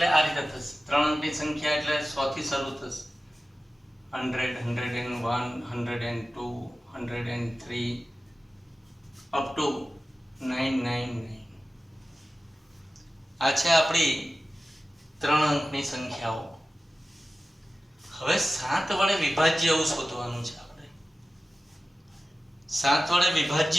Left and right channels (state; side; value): normal; both; correlation 0.95